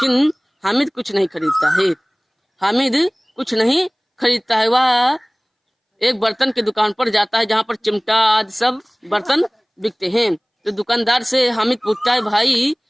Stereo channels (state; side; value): identical; both; correlation 1.00